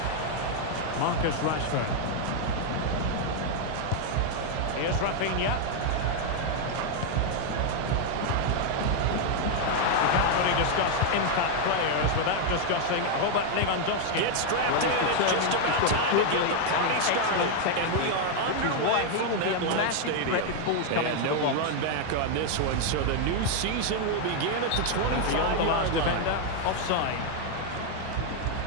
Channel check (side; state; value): both; different; correlation 0.00